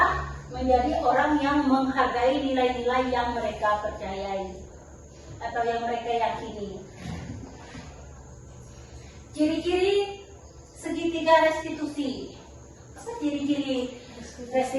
menjadi orang yang menghargai nilai-nilai yang mereka percayai atau yang mereka yakini. Ciri-ciri segitiga restitusi. Apa ciri-ciri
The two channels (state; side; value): identical; both; correlation 1.00